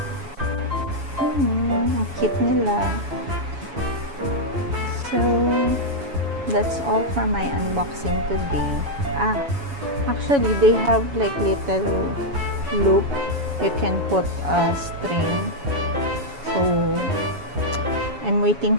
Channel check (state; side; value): late; left; 7.1 ms